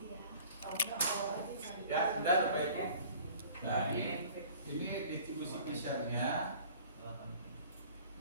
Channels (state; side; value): inverted; both; correlation -0.48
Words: Ya, sudah Bapak Ibu. Nah, ini distribusi besarnya